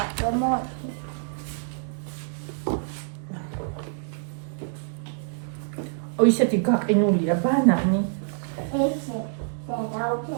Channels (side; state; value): left; silent; digital silence